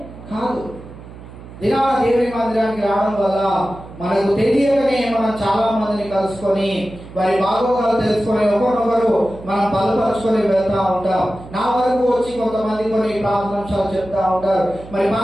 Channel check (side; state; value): right; noise; hum, 16 dB below the sound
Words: దినా దేవుని మందిరానికి రావడం వల్ల మనకు తెలియకనే మనం చాలా మందిని కలుసుకొని వారి బాగోగాలు తెలుసుకొని ఒకరినొకరు మనం బలపరుచుకొని వెళ్తా ఉంటాం. నా వరకు వచ్చి కొంతమంది కొన్ని ప్రార్థనాంశాలు చెప్తా ఉంటారు, మరి